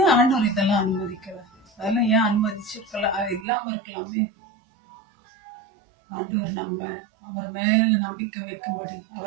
ஆண்டவர் இதெல்லாம் அனுமதிக்கிறார்? அதெல்லாம் ஏன் அனுமதிச்சிருக்கலாம், இல்லாம இருக்கலாமே. ஆண்டவர் நம்ம அவர் மேல நம்பிக்கை வைக்கும்படி,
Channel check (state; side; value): drops out; left; at 3.5 s